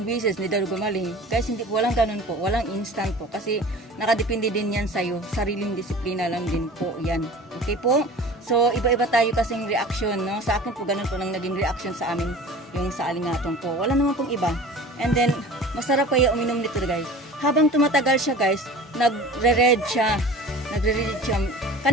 beses, hindi daw gumaling. Guys, hindi po, walang ganun po. Walang instant po. Kasi nakadepende din yan sa'yo. Sariling disiplina lang din po yan. Okay po? So, iba-iba tayo kasing reaction, no? Sa akin po, ganun po nang naging reaction sa amin yung sa alingatong po. Wala naman pong iba. And then, masarap kaya uminom nito, guys. Habang tumatagal siya, guys, nagre-red siya.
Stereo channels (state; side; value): normal; both; correlation 0.41